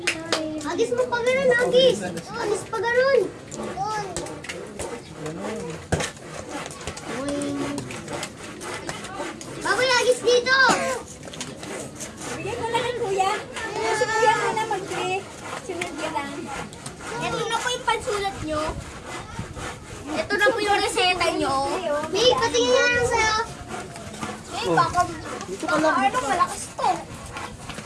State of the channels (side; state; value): both; identical; correlation 1.00